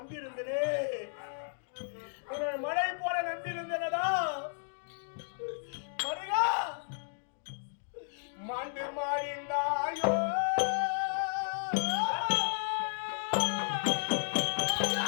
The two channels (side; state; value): right; silent; digital silence